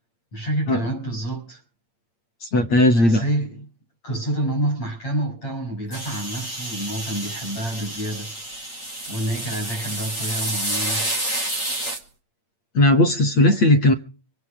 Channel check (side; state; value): right; late; 8.6 ms